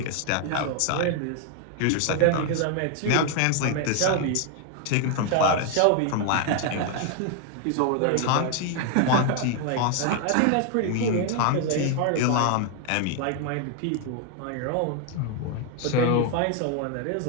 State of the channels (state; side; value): different; both; correlation 0.00